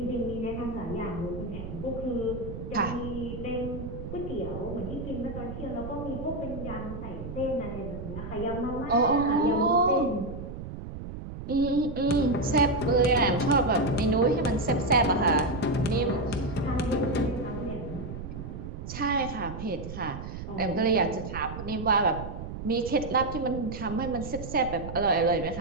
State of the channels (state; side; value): noise; right; rumble, 9 dB below the sound